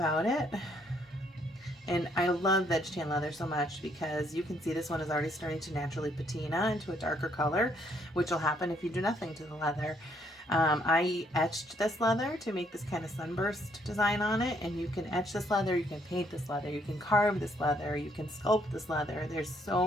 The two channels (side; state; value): both; normal; correlation 0.69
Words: it. And I love veg tan leather so much because you can see this one is already starting to naturally patina into a darker color, which will happen if you do nothing to the leather. I etched this leather to make this kind of sunburst design on it, and you can etch this leather, you can paint this leather, you can carve this leather, you can sculpt this leather. There's